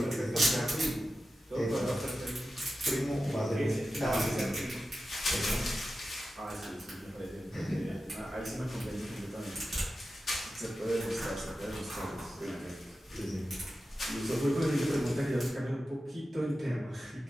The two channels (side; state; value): both; normal; correlation 0.92